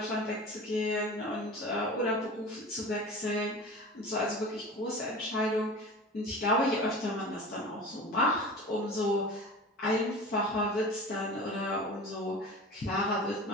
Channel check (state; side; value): normal; both; correlation 0.35